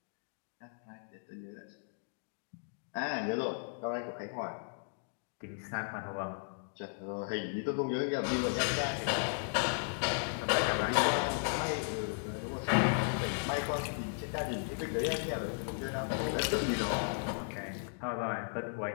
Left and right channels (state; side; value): silent; right; digital silence